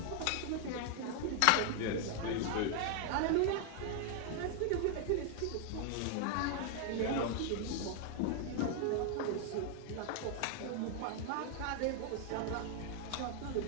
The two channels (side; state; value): both; different; correlation 0.00